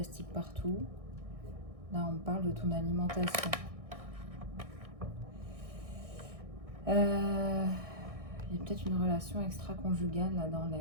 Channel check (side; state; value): left; late; 1.6 ms